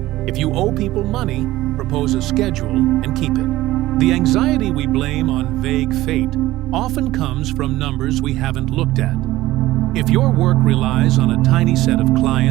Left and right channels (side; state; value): left; quieter; 16.6 dB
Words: If you owe people money, propose a schedule and keep it. The anxiety we blame on vague fate often comes from numbers we haven't looked at. If your work relies on a tiny set of